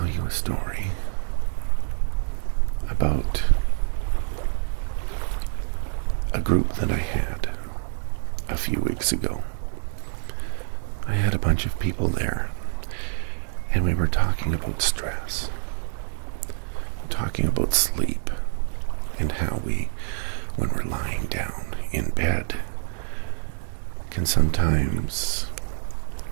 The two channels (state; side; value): silent; left; digital silence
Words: you a story about a group that I had a few weeks ago. I had a bunch of people there, and we were talking about stress, talking about sleep, and how we, when we're lying down in bed, can sometimes